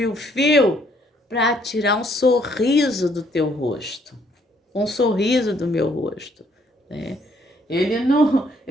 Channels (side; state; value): both; normal; correlation 0.67